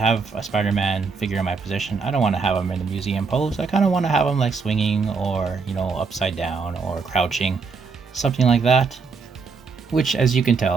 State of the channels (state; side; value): quieter; left; 4.8 dB